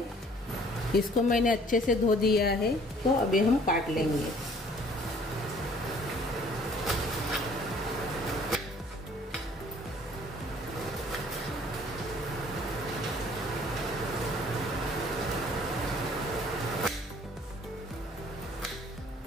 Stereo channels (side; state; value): both; normal; correlation 0.56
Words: इसको मैंने अच्छे से धो दिया है। तो अभी हम काट लेंगे।